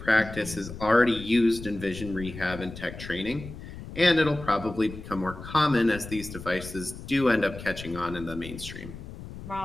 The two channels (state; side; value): noise; left; rumble, 12 dB below the sound